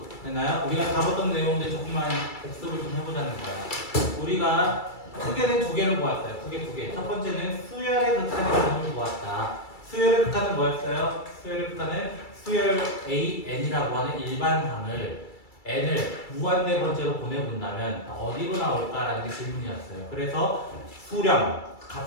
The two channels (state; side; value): late; right; 2.3 ms